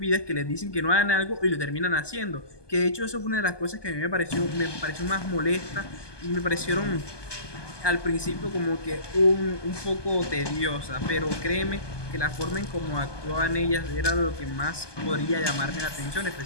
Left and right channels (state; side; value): late; right; 1.2 ms